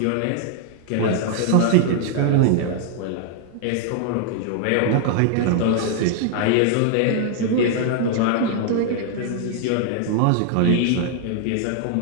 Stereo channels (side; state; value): both; different; correlation 0.00